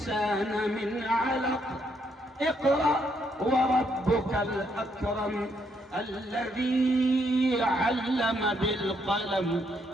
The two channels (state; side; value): normal; both; correlation 0.74